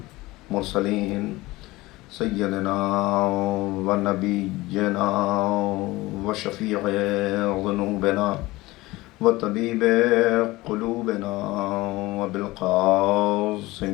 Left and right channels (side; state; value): right; quieter; 19.8 dB